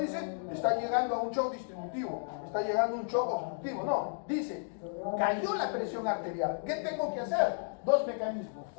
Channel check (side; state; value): right; silent; digital silence